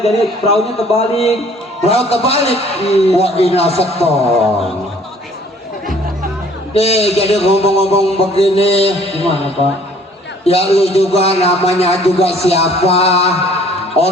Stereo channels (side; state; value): both; normal; correlation 0.56